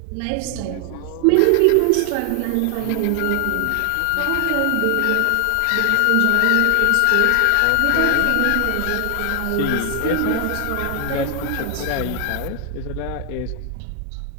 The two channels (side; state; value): both; different; correlation 0.00